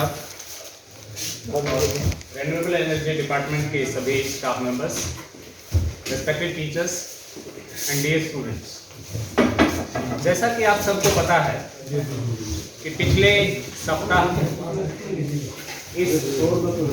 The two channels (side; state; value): both; identical; correlation 1.00